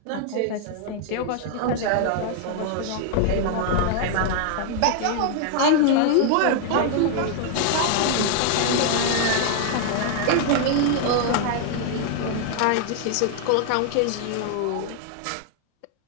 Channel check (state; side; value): different; both; correlation 0.00